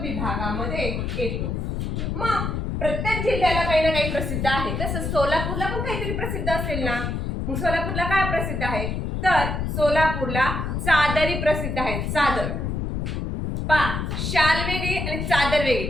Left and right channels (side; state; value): left; noise; rumble, 2 dB below the sound